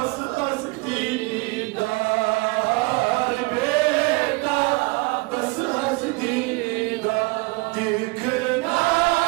ہستی دار بیتا بس ہستی دار دیکھنا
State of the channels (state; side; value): quieter; left; 26.2 dB